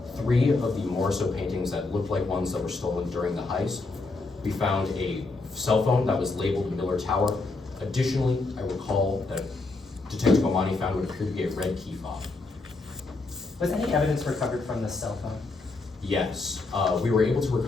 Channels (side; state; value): right; quieter; 3.5 dB